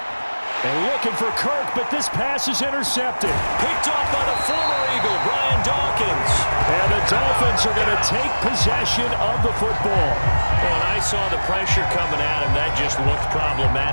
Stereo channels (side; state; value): both; inverted; correlation -1.00